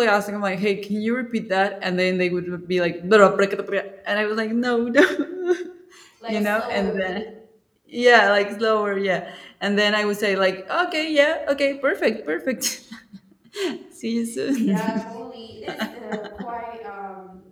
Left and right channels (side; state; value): both; identical; correlation 1.00